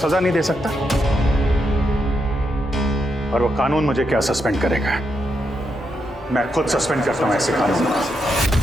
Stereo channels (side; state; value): both; normal; correlation 0.82